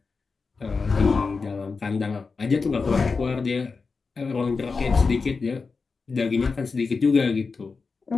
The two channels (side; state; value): right; quieter; 4.6 dB